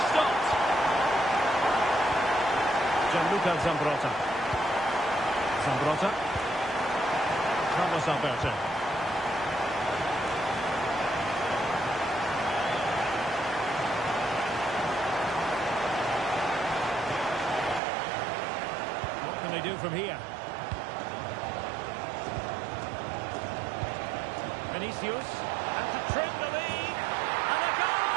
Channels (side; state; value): left; drops out; at 17.8 s